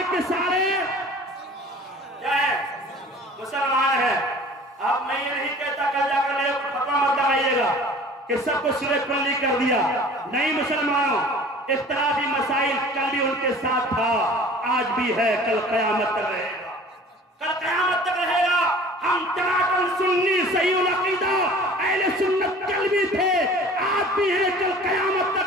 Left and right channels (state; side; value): normal; both; correlation 0.46